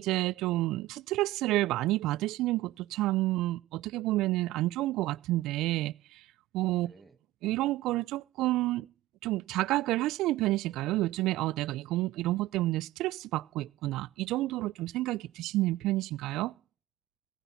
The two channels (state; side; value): quieter; left; 16.9 dB